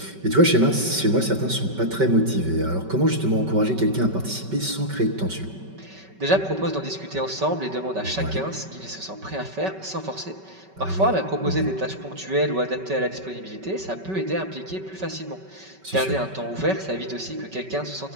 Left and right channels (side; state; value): left; late; 5.3 ms